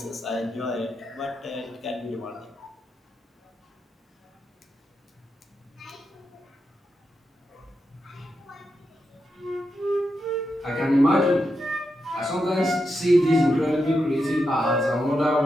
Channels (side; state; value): both; normal; correlation 0.86